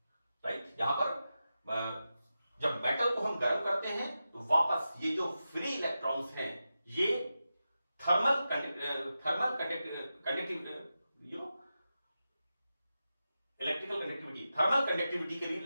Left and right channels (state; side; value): inverted; both; correlation -0.91